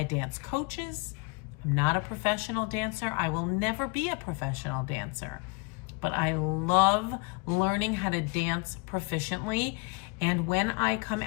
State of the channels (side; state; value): right; quieter; 28.7 dB